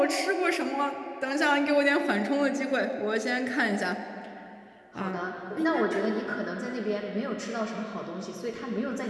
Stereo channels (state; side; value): identical; both; correlation 1.00